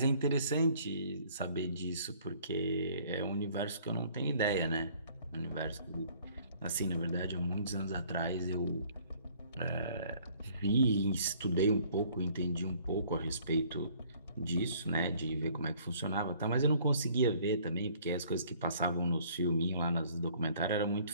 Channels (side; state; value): both; inverted; correlation -0.58